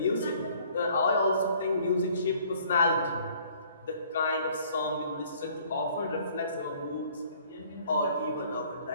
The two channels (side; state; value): both; inverted; correlation -0.57